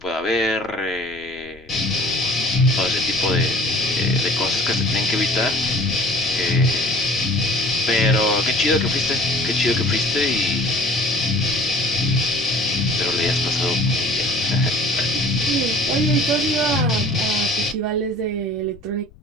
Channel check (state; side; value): noise; left; rumble, 25 dB below the sound